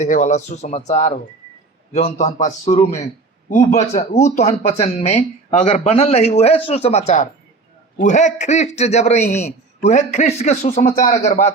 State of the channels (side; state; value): left; quieter; 3.8 dB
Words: वाला सुसमाचार हो, जौन तहन पास शुरू में ऊ तहन वचन में अगर बनल रही वह सुसमाचार, वह ख्रिस्ट जब रही, वह ख्रिस्ट के सुसमाचार अगर बात